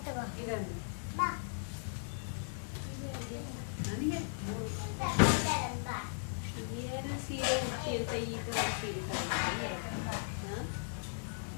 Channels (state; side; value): silent; right; digital silence